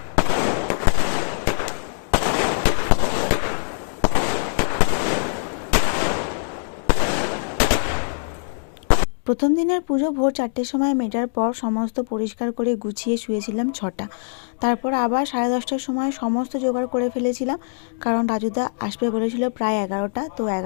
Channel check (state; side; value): silent; right; digital silence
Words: প্রথম দিনের পুজো ভোর 4টের সময় মেটার পর সমস্ত পরিষ্কার করে গুছিয়ে শুয়েছিলাম 6টা। তারপর আবার 10:30টার সময় সমস্ত জোগাড় করে ফেলেছিলাম, কারণ রাজুদা আসবে বলেছিল প্রায় 11টা, তো